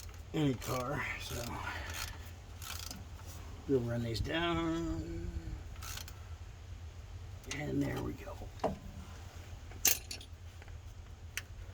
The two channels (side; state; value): both; identical; correlation 1.00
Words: any car. So we'll run these down, and there we go.